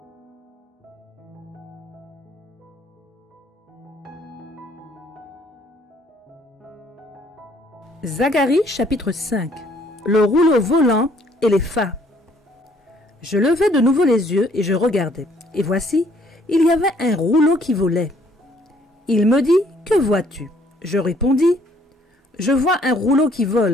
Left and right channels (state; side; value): normal; both; correlation 0.63